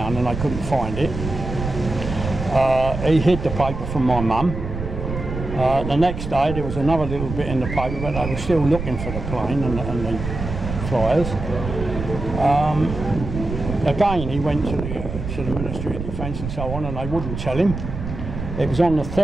and they couldn't find it. He hid the paper from my mum. The next day there was another little bit in the paper, but they were still looking for the plane and the flyers. Again, he went to the Ministry of Defence and so on, and they wouldn't tell him. It was on the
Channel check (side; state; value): right; noise; rumble, 7 dB below the sound